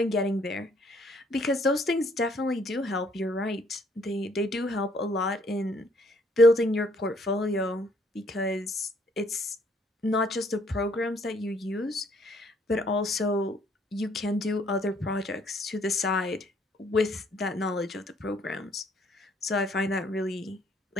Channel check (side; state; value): both; normal; correlation 0.65